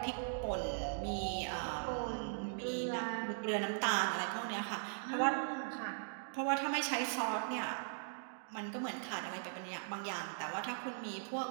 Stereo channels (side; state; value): left; silent; digital silence